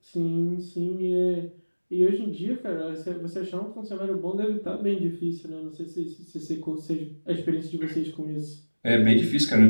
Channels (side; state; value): both; inverted; correlation -1.00